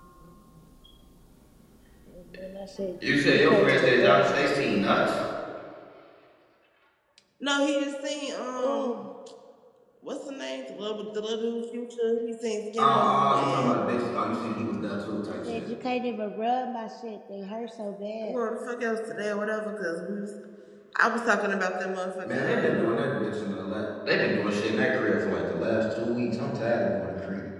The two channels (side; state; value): both; identical; correlation 1.00